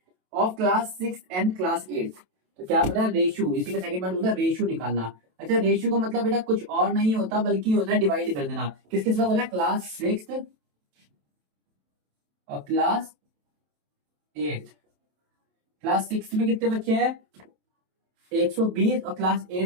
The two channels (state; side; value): late; left; 27 ms